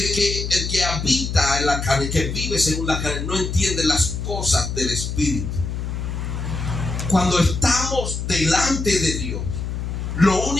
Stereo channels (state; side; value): noise; left; hum, 4 dB below the sound